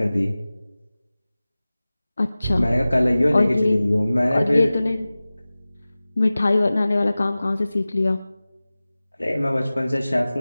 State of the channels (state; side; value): inverted; both; correlation -0.97